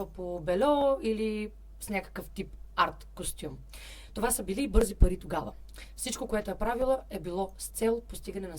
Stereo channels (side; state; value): both; identical; correlation 1.00